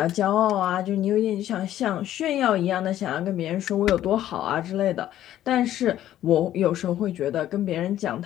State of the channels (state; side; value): quieter; right; 12.5 dB